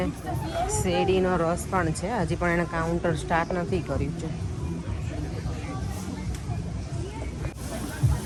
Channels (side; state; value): both; identical; correlation 1.00